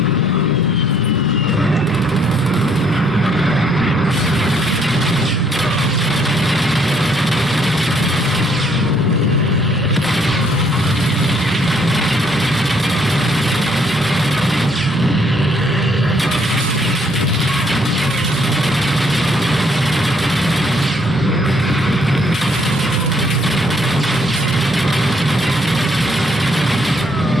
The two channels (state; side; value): normal; both; correlation 0.67